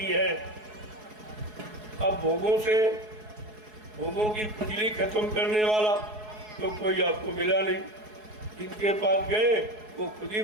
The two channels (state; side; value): late; left; 4.7 ms